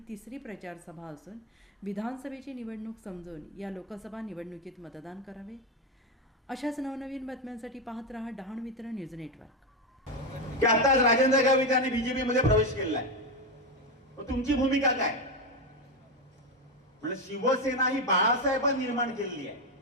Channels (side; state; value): both; normal; correlation 0.11